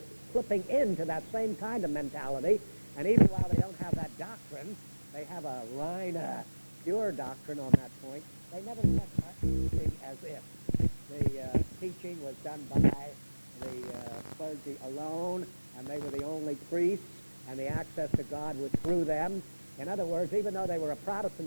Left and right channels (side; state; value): both; inverted; correlation -1.00